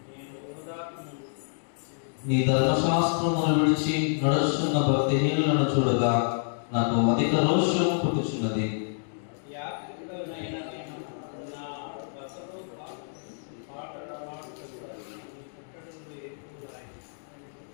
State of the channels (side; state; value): right; silent; digital silence